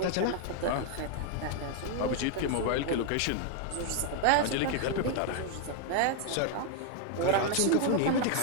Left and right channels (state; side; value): different; both; correlation 0.00